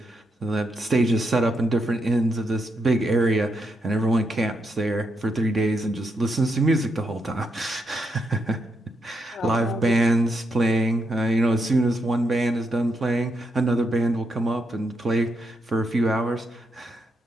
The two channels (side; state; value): both; normal; correlation 0.81